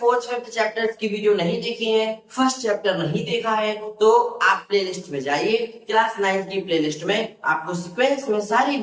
फिफ्थ चैप्टर्स की वीडियो नहीं देखी है, फर्स्ट चैप्टर नहीं देखा है, तो आप प्लेलिस्ट में जाइए। क्लास 9 की प्लेलिस्ट में आपको सीक्वेंस में सारी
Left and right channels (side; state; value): both; identical; correlation 1.00